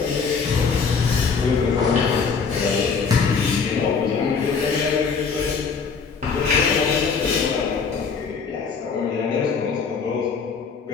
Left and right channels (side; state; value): right; quieter; 5.5 dB